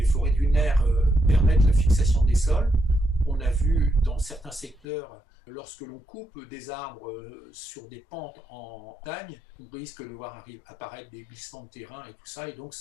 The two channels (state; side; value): drops out; right; at 4.9 s